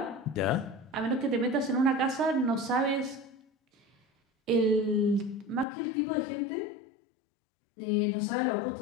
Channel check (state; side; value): drops out; right; at 5.7 s